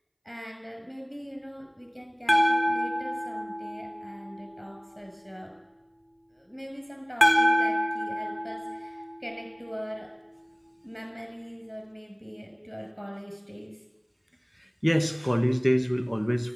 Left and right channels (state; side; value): identical; both; correlation 1.00